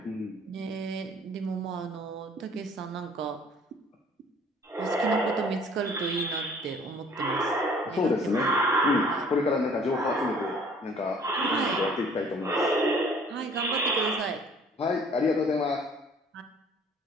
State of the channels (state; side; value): normal; both; correlation 0.54